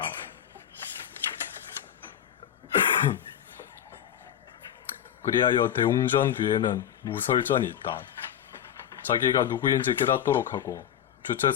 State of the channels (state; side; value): quieter; right; 10.0 dB